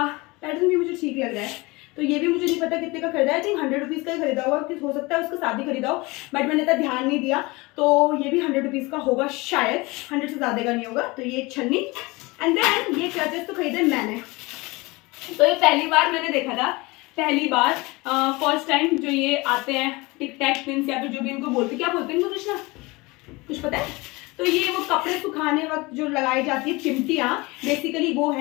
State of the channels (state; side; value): quieter; right; 23.7 dB